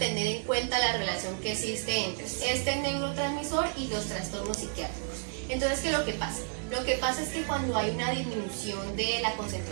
en cuenta la relación que existe entre este neurotransmisor y los trastornos psiquiátricos. Entonces, ¿qué es lo que pasa? Lo que pasa es que cuando hay una disminución de la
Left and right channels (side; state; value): left; silent; digital silence